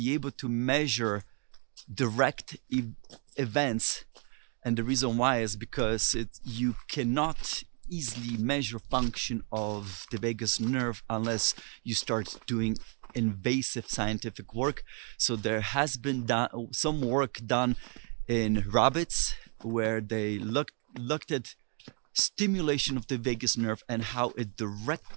able to measure direct events, and the reason why is because you cannot easily measure function of the vagus nerve unless you start doing invasive scientific work. So there has been some work done in rabbits where they looked at stimulation of the vagus nerve and how it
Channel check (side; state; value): left; quieter; 38.1 dB